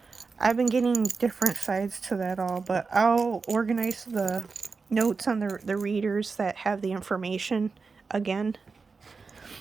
I've been getting different sides to that all, but I'll organize the notes on the readers that have the information again.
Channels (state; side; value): quieter; left; 4.6 dB